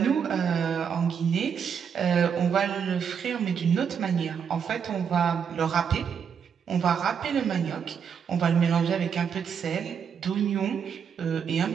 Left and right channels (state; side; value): quieter; left; 7.1 dB